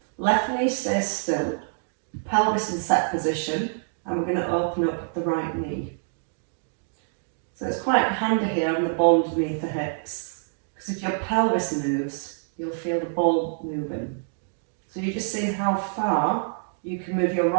Left knee stays still. Pelvis in set position, and we're going to open up the right knee. So it's quite handy here on the ball underneath the hips, because if your pelvis moves, you'll feel the ball moving. So you're just seeing how far you can move your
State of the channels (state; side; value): silent; left; digital silence